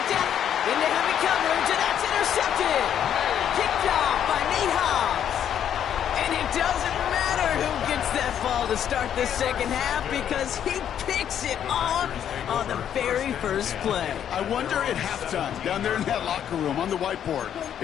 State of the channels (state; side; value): quieter; right; 9.5 dB